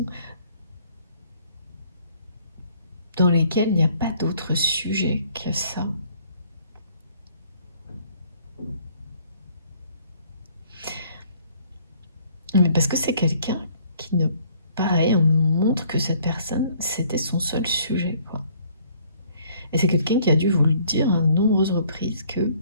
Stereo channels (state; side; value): inverted; both; correlation -0.60